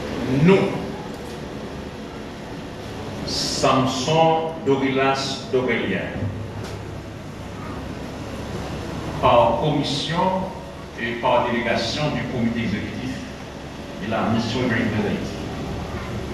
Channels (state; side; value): identical; both; correlation 1.00